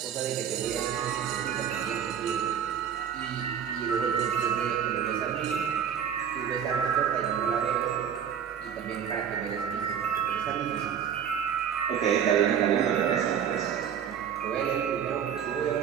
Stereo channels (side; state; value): left; quieter; 8.4 dB